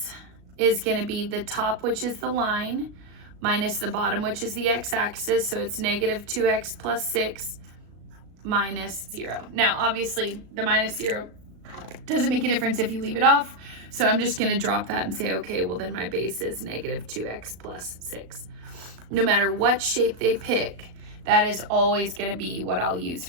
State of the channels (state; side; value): late; left; 35 ms